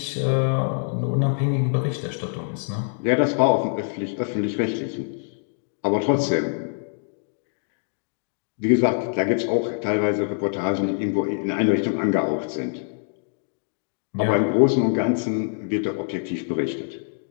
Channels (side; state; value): right; silent; digital silence